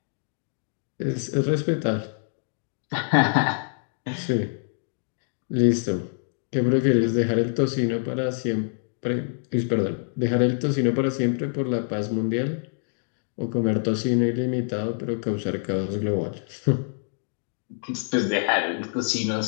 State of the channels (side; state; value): right; silent; digital silence